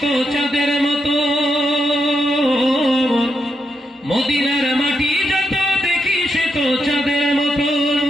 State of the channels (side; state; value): both; normal; correlation 0.82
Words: তো চাঁদের মতো, মদিনার মাটি যত দেখি সে তো চাঁদের মতো,